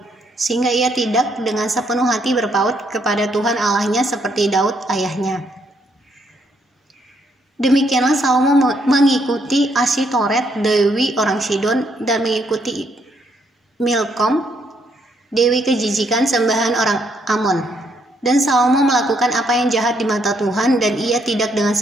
Sehingga ia tidak dengan sepenuh hati berpaut kepada Tuhan Allahnya seperti Daud ayahnya. Demikianlah Salomo mengikuti Asitoret, dewi orang Sidon, dan mengikuti Milkom, dewi kejijikan sembahan orang Amon. Dan Salomo melakukan apa yang jahat di mata Tuhan, dan ia tidak dengan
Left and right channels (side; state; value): both; normal; correlation 0.73